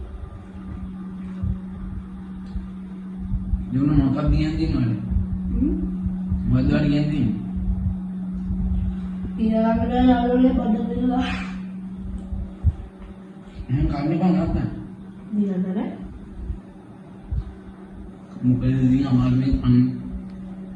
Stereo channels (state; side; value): identical; both; correlation 1.00